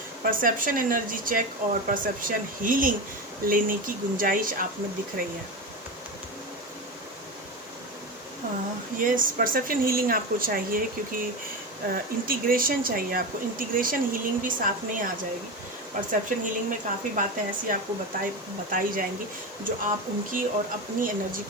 Perception energy check और परसेप्शन हीलिंग लेने की गुंजाइश आप में दिख रही है। यस, परसेप्शन हीलिंग आपको चाहिए क्योंकि इंटीग्रेशन चाहिए आपको। इंटीग्रेशन हीलिंग भी साथ में ही आ जाएगी। परसेप्शन हीलिंग में काफ़ी बातें ऐसी आपको बताई जाएंगी जो आप उनकी और अपनी एनर्जी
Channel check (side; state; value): left; noise; hiss, 25 dB below the sound